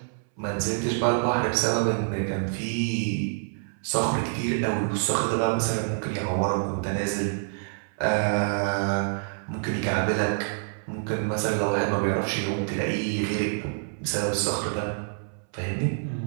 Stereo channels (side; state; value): left; silent; 60 dB below the other